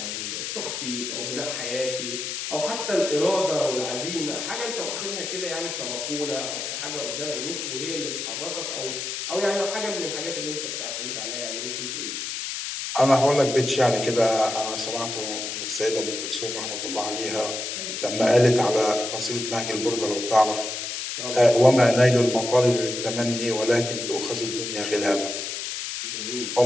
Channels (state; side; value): noise; left; hiss, 5 dB below the sound